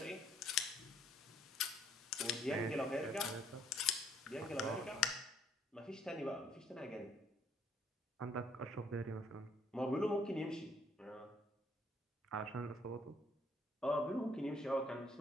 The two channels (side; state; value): both; normal; correlation 0.65